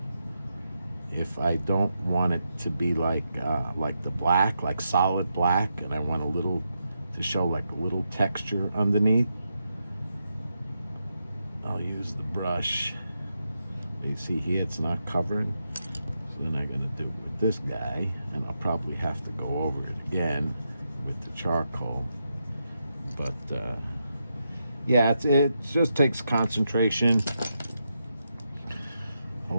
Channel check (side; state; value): both; inverted; correlation -0.84